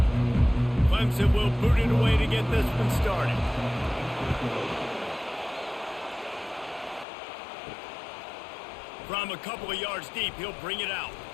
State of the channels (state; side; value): drops out; right; at 7.1 s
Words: Clemson will boot it away to get this one started. From a couple of yards deep, he'll bring it out.